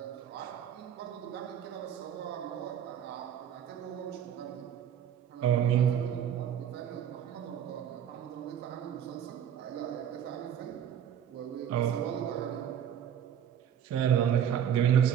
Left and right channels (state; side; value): quieter; left; 9.3 dB